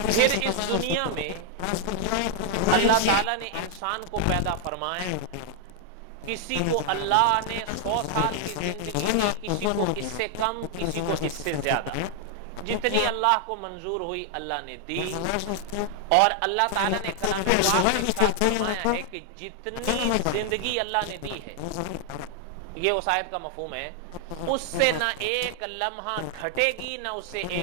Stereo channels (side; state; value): both; different; correlation 0.00